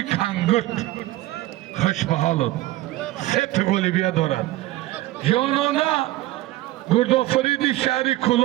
Kangurt Xushbaholib سه گلی بیا دارد جانانا گردآفریدی شهری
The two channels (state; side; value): quieter; left; 17.0 dB